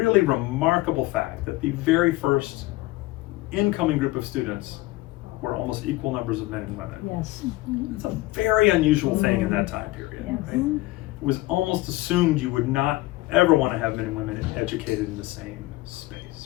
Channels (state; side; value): quieter; right; 19.3 dB